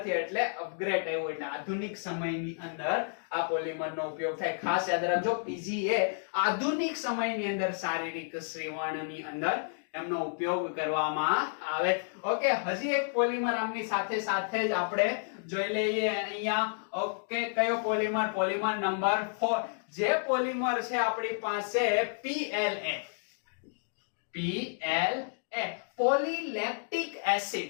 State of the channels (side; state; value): right; silent; digital silence